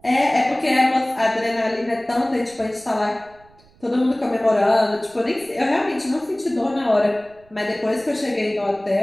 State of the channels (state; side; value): noise; right; rumble, 29 dB below the sound